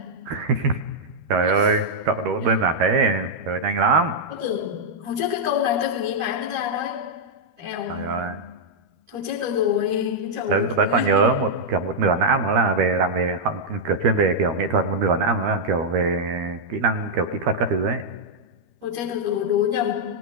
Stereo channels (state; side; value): late; left; 13 ms